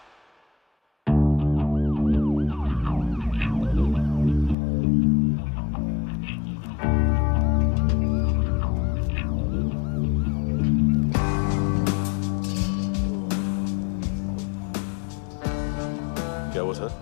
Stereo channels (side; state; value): right; drops out; at 4.5 s